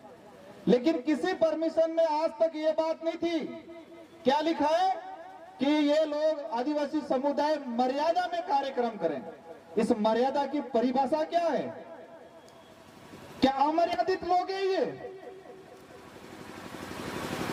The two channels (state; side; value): identical; both; correlation 1.00